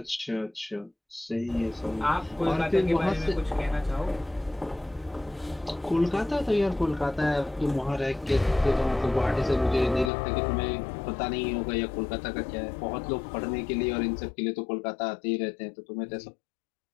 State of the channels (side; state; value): right; drops out; at 10.1 s